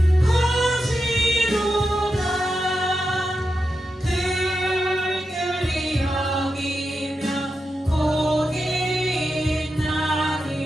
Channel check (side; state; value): both; normal; correlation 0.89